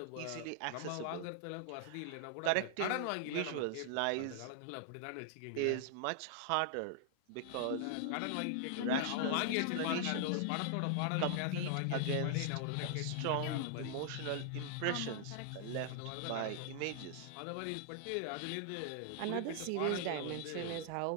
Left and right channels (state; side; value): different; both; correlation -0.01